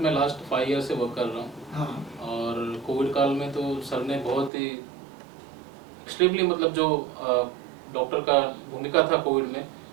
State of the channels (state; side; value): drops out; left; at 4.5 s